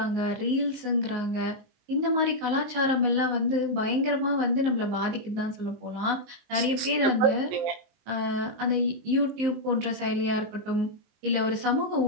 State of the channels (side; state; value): left; late; 19 ms